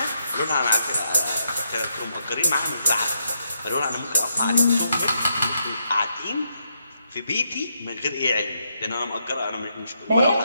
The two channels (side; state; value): both; inverted; correlation -0.79